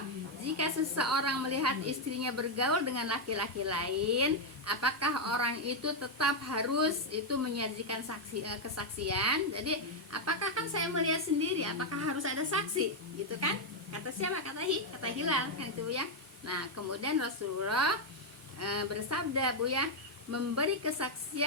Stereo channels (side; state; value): both; normal; correlation 0.01